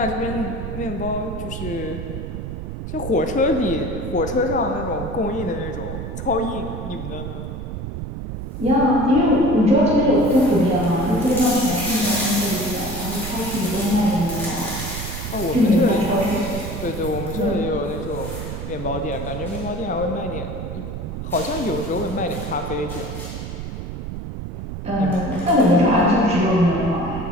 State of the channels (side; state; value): right; noise; rumble, 7 dB below the sound